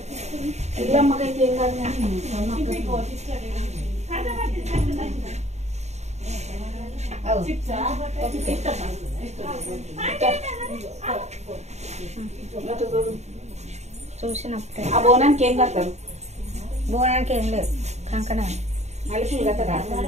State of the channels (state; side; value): late; left; 0.32 ms